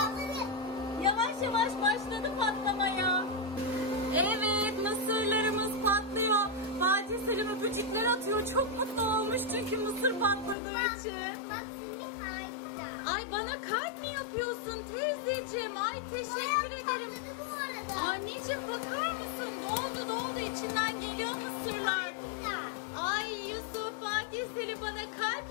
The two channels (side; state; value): right; drops out; at 10.6 s